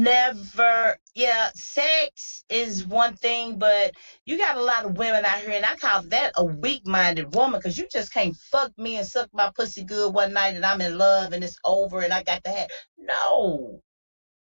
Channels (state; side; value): inverted; both; correlation -1.00